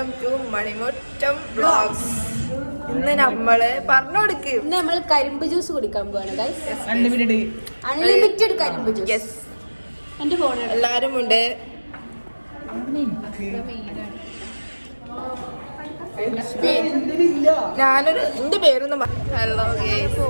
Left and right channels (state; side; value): inverted; both; correlation -1.00